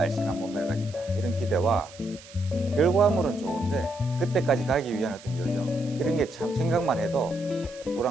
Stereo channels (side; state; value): right; noise; hiss, 20 dB below the sound